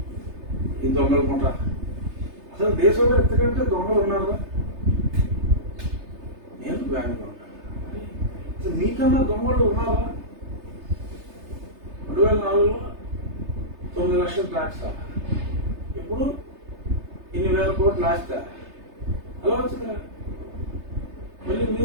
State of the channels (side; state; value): left; late; 3.3 ms